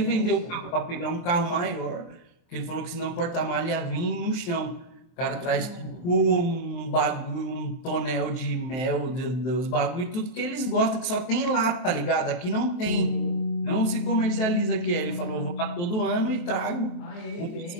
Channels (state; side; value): late; right; 23 ms